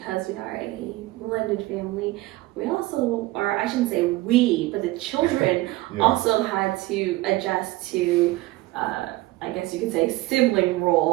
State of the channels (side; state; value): left; quieter; 19.1 dB